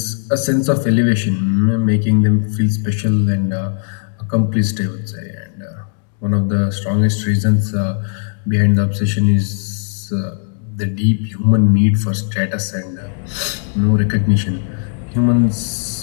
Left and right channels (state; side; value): silent; right; 68 dB below the other